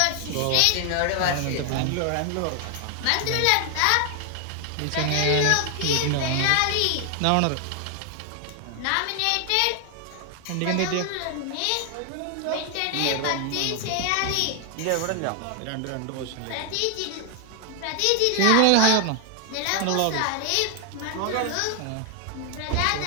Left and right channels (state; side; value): different; both; correlation 0.00